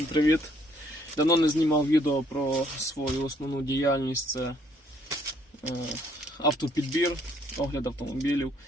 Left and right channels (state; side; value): normal; both; correlation 0.66